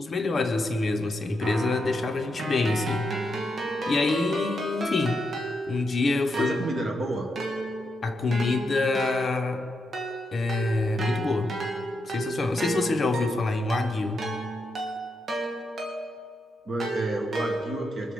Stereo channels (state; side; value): normal; both; correlation 0.83